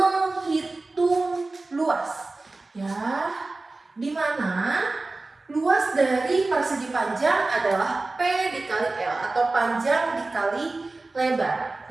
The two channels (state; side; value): quieter; left; 3.3 dB